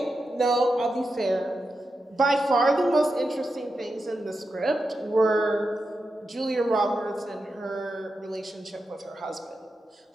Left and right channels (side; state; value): both; normal; correlation 0.89